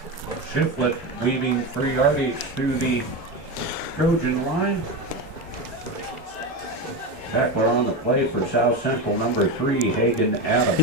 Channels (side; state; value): both; normal; correlation 0.18